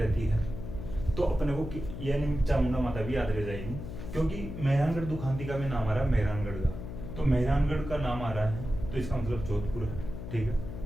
है तो अपने को यानी चामुंडा माता भी याद रह जाएगी, क्योंकि मेहरानगढ़ दुखांतिका में नाम आ रहा है मेहरानगढ़ का। तो मेहरानगढ़ का नाम आ रहा है तो इसका मतलब जोधपुर है, ठीक है।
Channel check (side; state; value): left; noise; hum, 8 dB below the sound